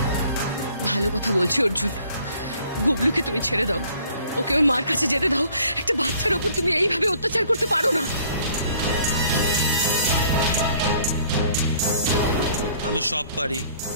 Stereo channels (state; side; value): inverted; both; correlation -0.58